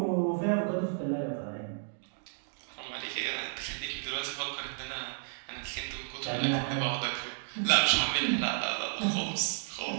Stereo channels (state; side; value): silent; left; 56 dB below the other